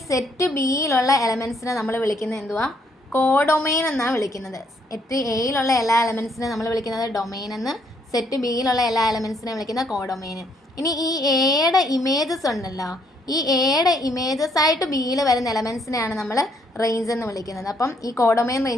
സെറ്റ് ബിയിലുള്ള എലമെൻറ്റ്സിനെ നമ്മൾ വിളിക്കുന്നത് എന്തുവാ? കോഡൊമെയിൻ എന്നാണ് വിളിക്കുന്നത്. സെറ്റ് എയിലുള്ള എല്ലാ എലമെൻറ്റ്സിനെ നമ്മൾ വിളിക്കുന്നത് ഡൊമെയിൻ എന്ന്, സെറ്റ് ബിയിലുള്ള എല്ലാ എലമെൻറ്റ്സിനെ വിളിക്കുന്ന കോഡൊമെയിൻ. ഇനി ഈ എയുടെ ഇമേജസ് ഉണ്ടല്ലോ, ഈ എയുടെ ഇമേജസ് ആയിട്ട് ബിയിൽ വരുന്ന എലമെൻറ്റ്സിനെയാണ് നമ്മൾ റേഞ്ച് എന്ന് വിളിക്കുന്നത്. അപ്പം ഈ കോഡൊമെയിൻ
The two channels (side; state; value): both; normal; correlation 0.69